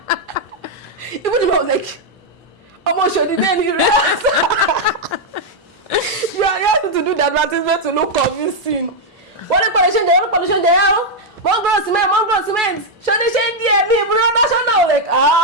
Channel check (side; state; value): both; normal; correlation -0.01